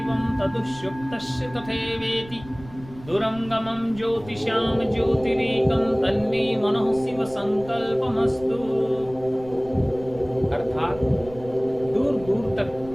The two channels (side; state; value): right; noise; rumble, 18 dB below the sound